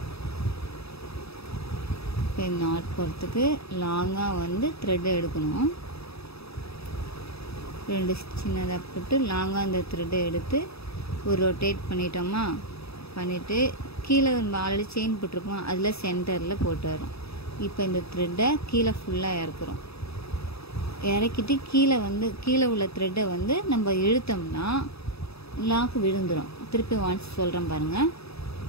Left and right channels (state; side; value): late; right; 0.78 ms